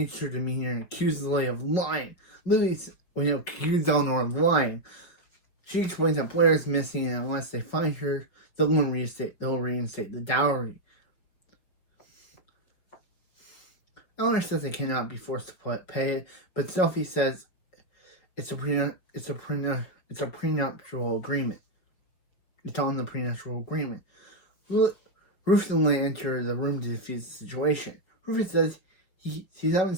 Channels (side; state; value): right; late; 5.7 ms